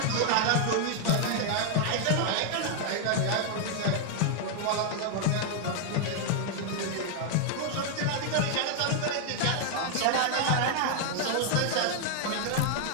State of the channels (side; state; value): both; different; correlation 0.00